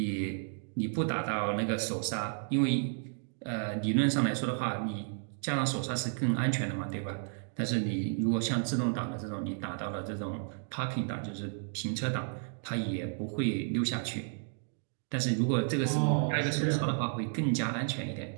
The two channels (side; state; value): left; silent; 56 dB below the other